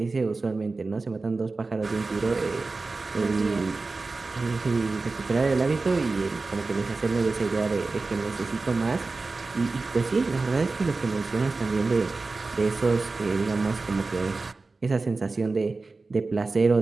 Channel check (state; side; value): quieter; left; 3.7 dB